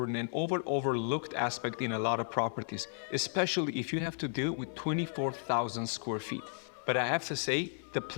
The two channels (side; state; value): right; silent; 55 dB below the other